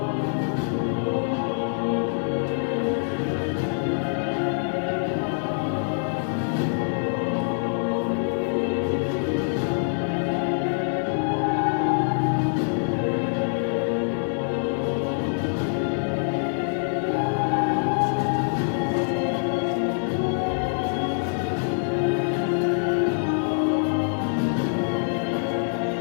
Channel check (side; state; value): right; silent; digital silence